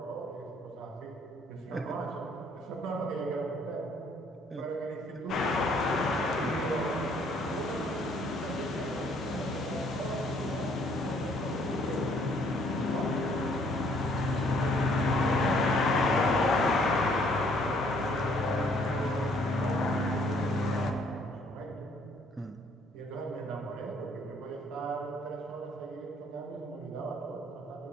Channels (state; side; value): normal; both; correlation 0.63